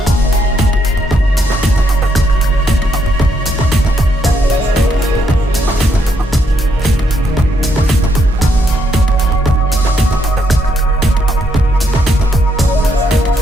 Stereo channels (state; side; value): normal; both; correlation 0.75